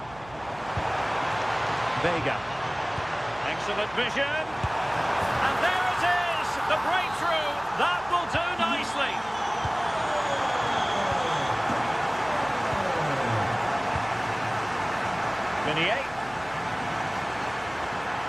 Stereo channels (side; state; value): right; noise; hum, 21 dB below the sound